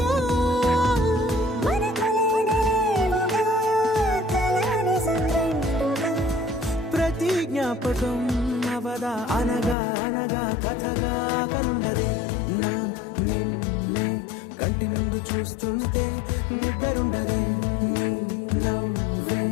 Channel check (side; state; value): right; drops out; at 9.8 s